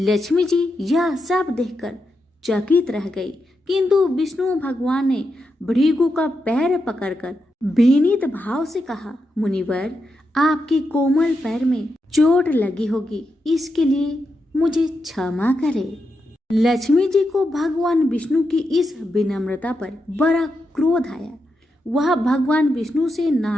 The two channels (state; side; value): normal; both; correlation 0.86